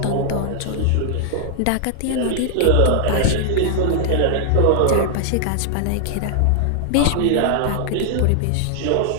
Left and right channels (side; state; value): both; different; correlation -0.01